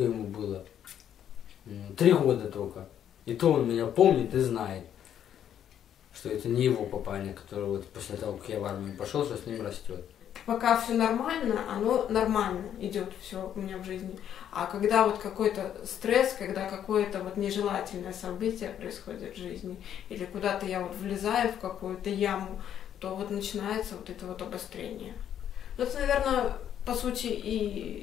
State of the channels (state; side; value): quieter; right; 9.8 dB